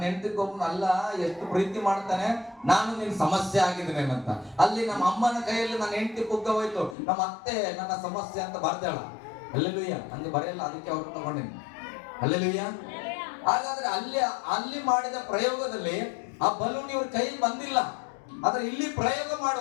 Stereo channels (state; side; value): drops out; right; at 7.0 s